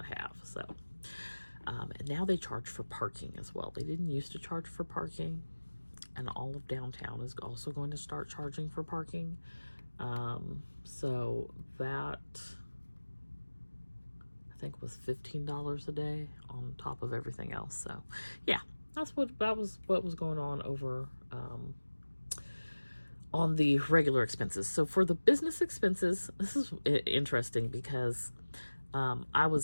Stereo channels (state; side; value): inverted; both; correlation -1.00